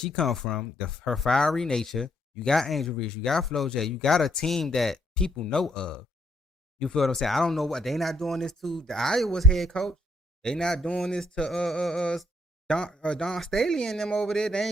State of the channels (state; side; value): normal; both; correlation 0.71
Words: come from, her fiery nature. You got Angel Reese, you got Flo J, you got a team that people know of. You feel what I'm saying? I don't know what they not doing this to the Iowa's head coach. They not doing this to Don Staley and them over there. They